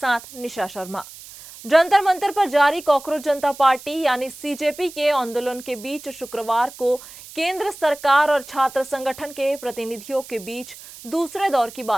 निशा शर्मा। जंतर मंतर पर जारी कॉकरोच जनता पार्टी यानी सीजेपी के आंदोलन के बीच शुक्रवार को केंद्र सरकार और छात्र संगठन के प्रतिनिधियों के बीच दूसरे दौर की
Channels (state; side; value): noise; right; hiss, 17 dB below the sound